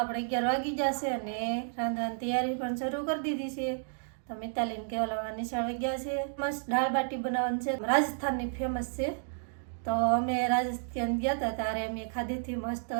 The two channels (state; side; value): silent; left; digital silence